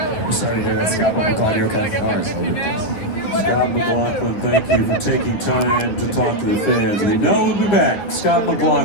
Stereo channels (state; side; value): late; right; 9.8 ms